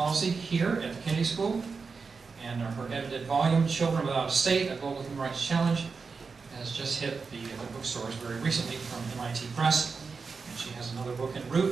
here at the Kennedy School. And her edited volume, Children Without a State, A Global Human Rights Challenge, has just hit the bookstores very recently from MIT Press. And she has another book en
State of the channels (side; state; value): left; quieter; 4.9 dB